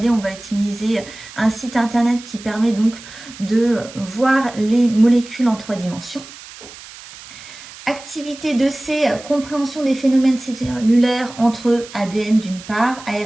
On va utiliser un site internet qui permet donc de voir les molécules en 3 dimensions. Activité 2C, compréhension des phénomènes cellulaires entre ADN d'une part,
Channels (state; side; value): noise; right; hiss, 17 dB below the sound